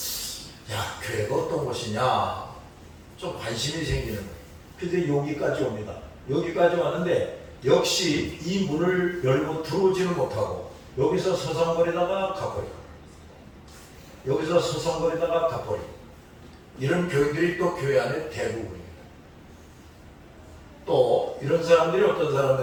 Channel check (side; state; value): both; identical; correlation 1.00